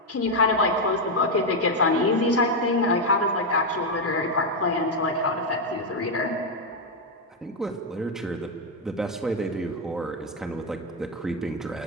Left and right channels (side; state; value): both; normal; correlation 0.04